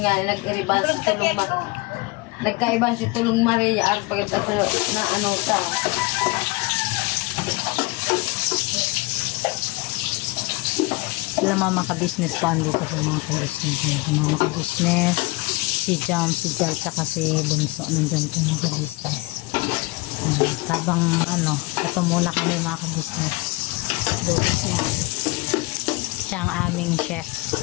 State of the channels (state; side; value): quieter; right; 23.4 dB